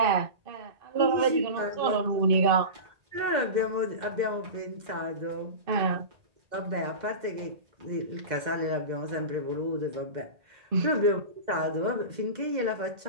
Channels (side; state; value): left; late; 2.0 ms